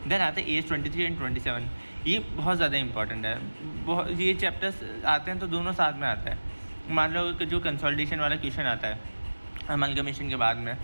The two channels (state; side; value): inverted; both; correlation -1.00